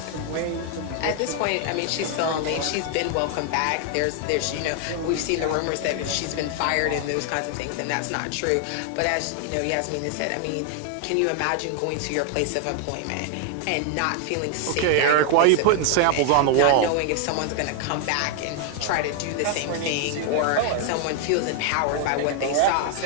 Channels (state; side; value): different; both; correlation 0.00